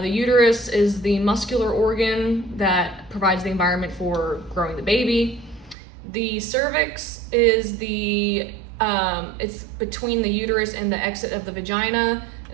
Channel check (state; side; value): drops out; left; at 5.8 s